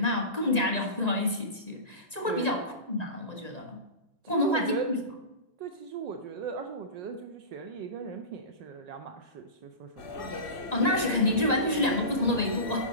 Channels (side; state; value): right; late; 1.9 ms